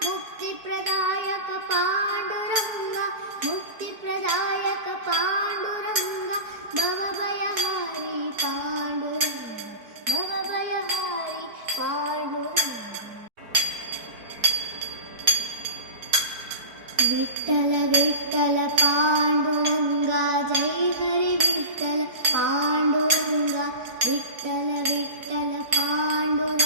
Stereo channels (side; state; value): left; late; 4.5 ms